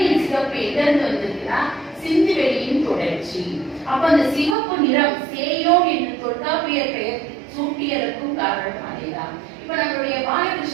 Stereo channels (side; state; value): left; drops out; at 4.5 s